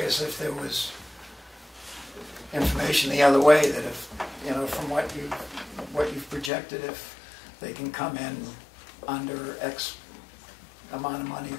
if there was information the other way, that if from what you've projected, if they can come in under X amount of money,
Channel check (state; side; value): drops out; right; at 6.5 s